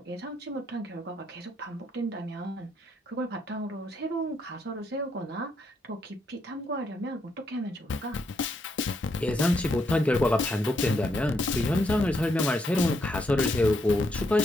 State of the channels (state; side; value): normal; both; correlation 0.76